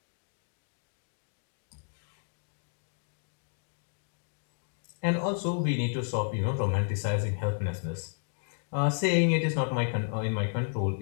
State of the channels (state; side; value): silent; right; 56 dB below the other